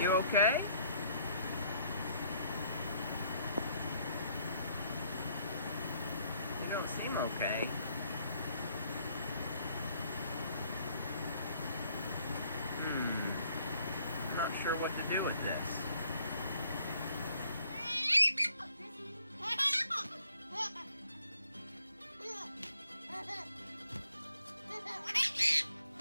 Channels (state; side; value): inverted; both; correlation -0.66